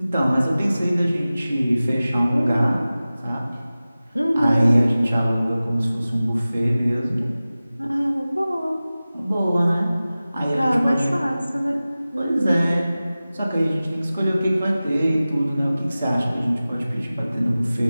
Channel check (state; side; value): inverted; both; correlation -0.97